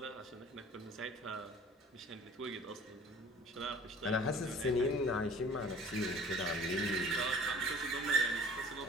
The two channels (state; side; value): normal; both; correlation 0.48